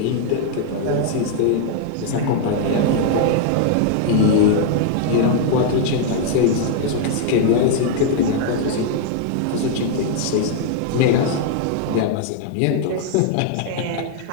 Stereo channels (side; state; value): both; different; correlation 0.00